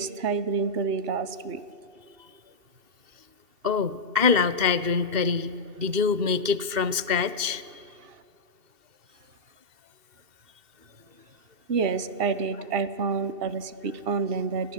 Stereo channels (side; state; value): left; late; 2.7 ms